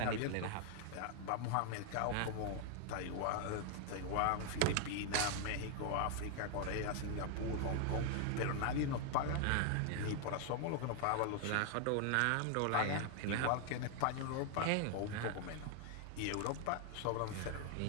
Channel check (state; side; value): different; both; correlation 0.00